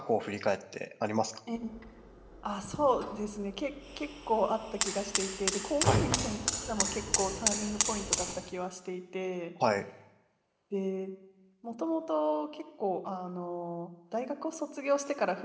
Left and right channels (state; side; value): identical; both; correlation 1.00